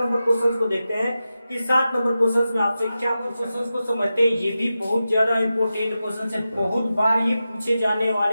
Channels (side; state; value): both; inverted; correlation -0.92